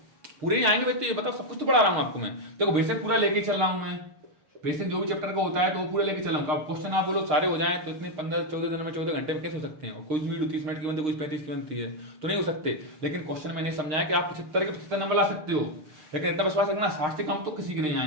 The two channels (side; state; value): left; late; 6.5 ms